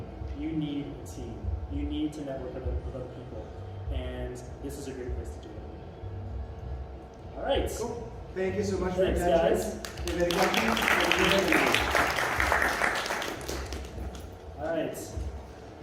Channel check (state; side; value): identical; both; correlation 1.00